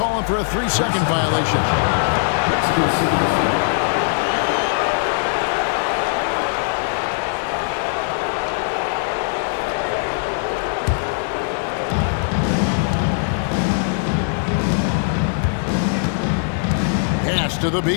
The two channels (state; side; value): silent; right; 63 dB below the other